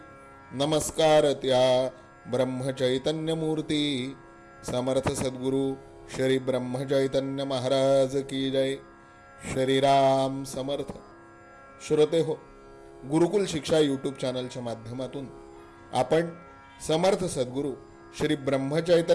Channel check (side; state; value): both; identical; correlation 1.00